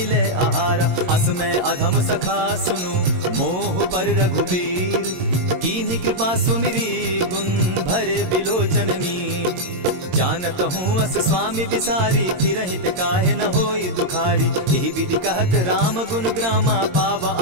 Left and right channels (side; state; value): left; late; 22 ms